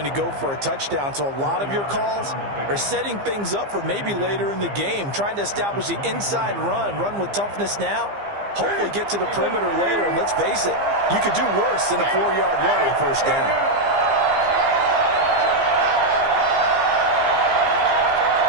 to go for a touchdown, so a lot of your calls are setting things up for maybe later in the game, trying to establish the inside run with toughness now, hopefully get to the perimeter later, and let's face it, you could do worse than a 4-yard run on 1st down.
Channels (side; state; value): left; late; 15 ms